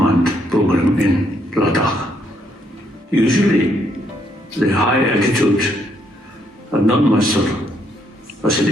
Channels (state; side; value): normal; both; correlation 0.73